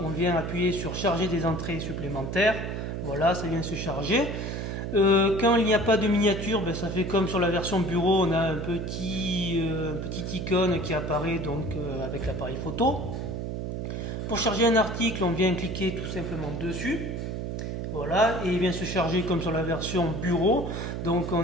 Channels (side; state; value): right; noise; hum, 4 dB below the sound